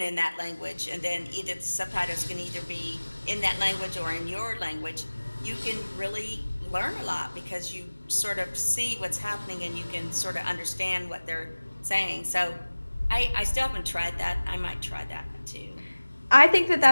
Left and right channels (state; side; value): inverted; both; correlation -1.00